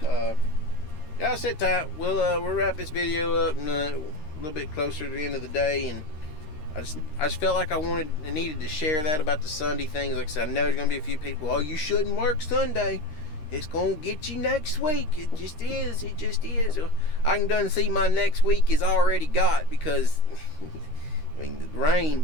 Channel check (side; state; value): right; late; 13 ms